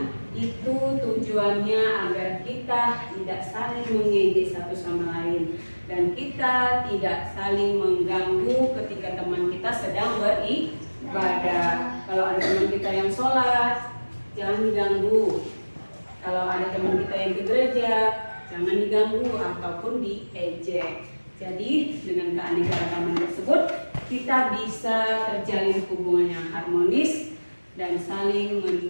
Itu tujuannya agar kita tidak saling mengejek satu sama lain dan kita tidak saling mengganggu ketika teman kita sedang beribadah. Kalau ada teman kita yang sholat, jangan diganggu. Kalau ada teman kita yang ke gereja, jangan diganggu ataupun diejek. Jadi dengan keanekaragaman tersebut kita bisa terjalin hubungan yang harmonis dan saling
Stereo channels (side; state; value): both; inverted; correlation -1.00